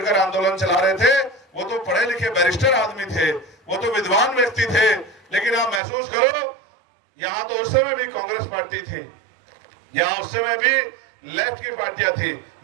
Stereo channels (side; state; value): left; drops out; at 5.8 s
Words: आंदोलन चला रहे थे वो तो पढ़े लिखे बैरिस्टर आदमी थे, वो तो विद्वान व्यक्ति थे। लेकिन आप महसूस करो, यहाँ तो उस समय भी कांग्रेस पार्टी थी, यहाँ उस समय भी लेफ्ट की पार्टियां थी,